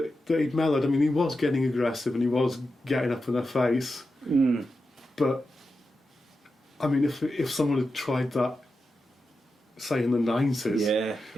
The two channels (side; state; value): both; normal; correlation 0.90